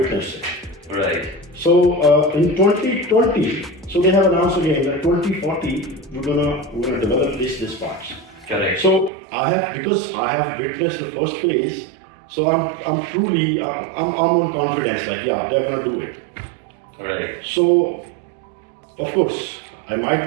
it. Right. So in 2020, so they have announced again that 2040 we're gonna develop this parts. Correct. So because I have witnessed the first phase, so I'm truly on confidence. Like they're gonna do it. Right. So of course I might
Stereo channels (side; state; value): left; drops out; at 9.1 s